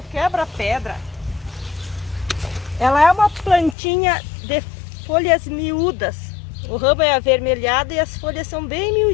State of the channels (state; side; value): drops out; right; at 3.8 s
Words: quebra-pedra, ela é uma plantinha de folhas miúdas. O ramo é avermelhado e as folhas são bem